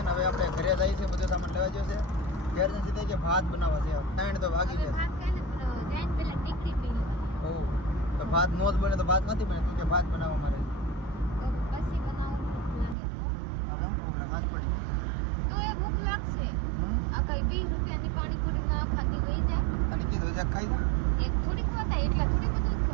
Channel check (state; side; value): drops out; left; at 13.0 s